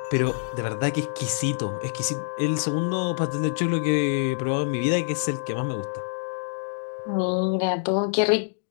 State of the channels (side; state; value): right; silent; digital silence